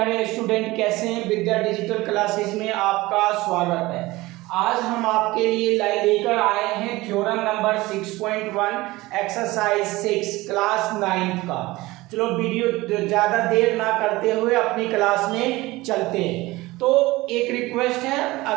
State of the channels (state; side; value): quieter; left; 19.9 dB